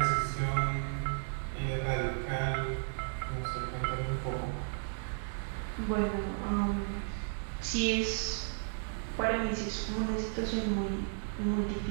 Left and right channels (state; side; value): silent; left; digital silence